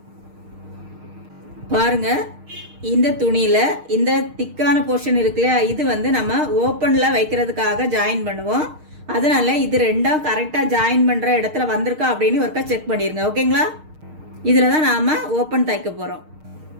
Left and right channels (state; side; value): late; left; 6.5 ms